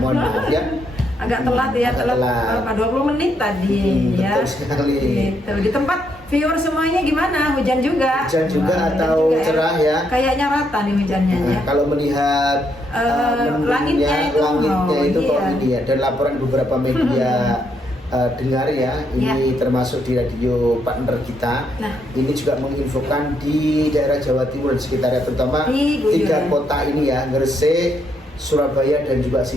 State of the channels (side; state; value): both; normal; correlation 0.76